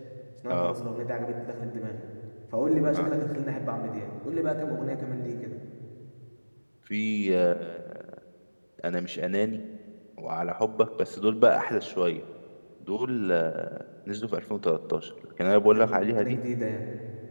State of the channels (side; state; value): both; inverted; correlation -1.00